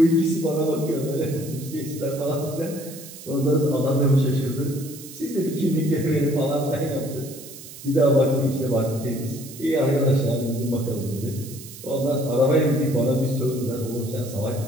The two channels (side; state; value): right; noise; hiss, 15 dB below the sound